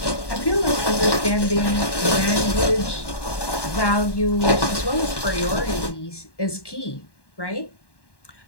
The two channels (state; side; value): late; right; 1.1 ms